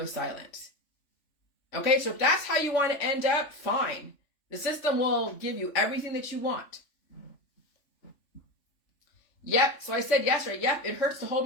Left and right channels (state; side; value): late; right; 3.4 ms